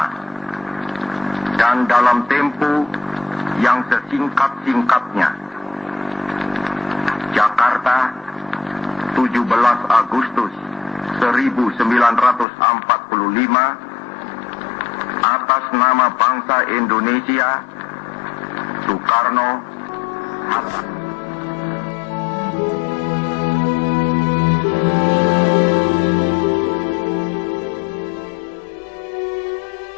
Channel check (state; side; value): drops out; right; at 12.5 s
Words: dan dalam tempo yang sesingkat-singkatnya. Jakarta, 17 Agustus 1945, atas nama bangsa Indonesia, Soekarno Hatta.